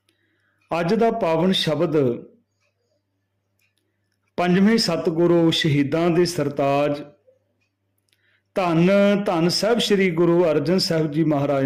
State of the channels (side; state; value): both; identical; correlation 1.00